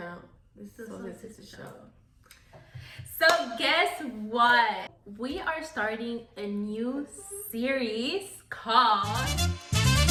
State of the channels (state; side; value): identical; both; correlation 1.00